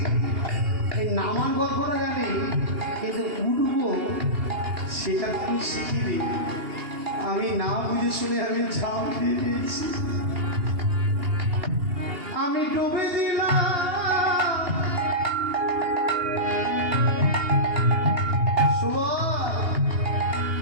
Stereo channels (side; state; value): left; late; 2.8 ms